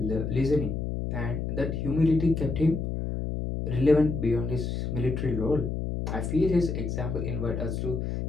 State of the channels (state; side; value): noise; left; hum, 3 dB below the sound